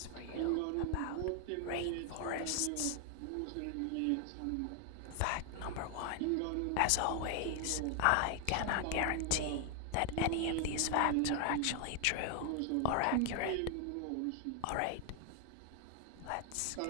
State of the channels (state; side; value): different; both; correlation 0.00